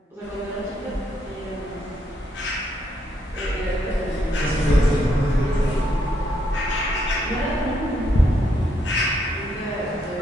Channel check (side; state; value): both; normal; correlation 0.75